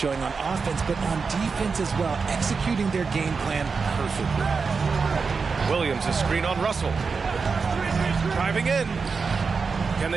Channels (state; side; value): quieter; left; 5.0 dB